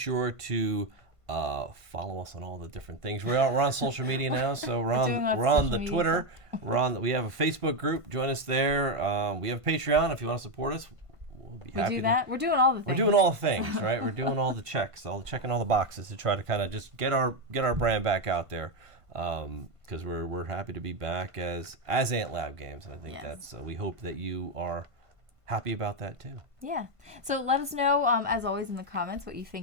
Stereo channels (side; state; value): left; late; 1.5 ms